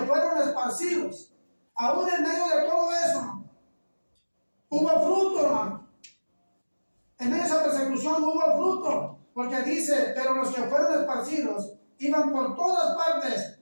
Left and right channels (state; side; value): inverted; both; correlation -1.00